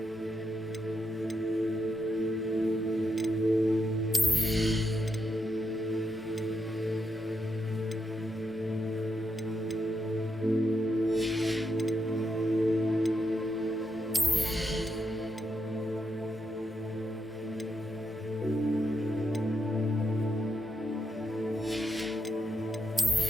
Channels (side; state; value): both; normal; correlation 0.83